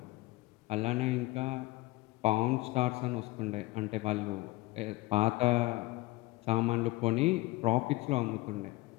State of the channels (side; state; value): right; quieter; 20.2 dB